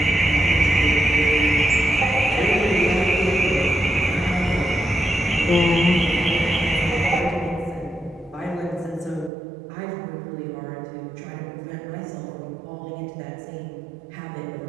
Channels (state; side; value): drops out; left; at 9.3 s